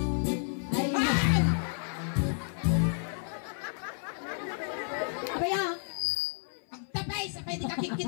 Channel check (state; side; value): silent; right; 57 dB below the other